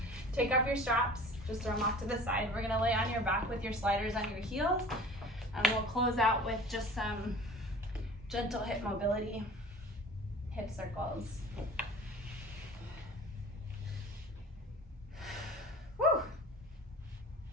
Take off your straps, just throw them off to the side. We're gonna lay on your back with your sliders on your heels, and we'll close out with just some gentle hip mobility, hip circles. Woo!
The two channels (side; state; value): both; normal; correlation 0.42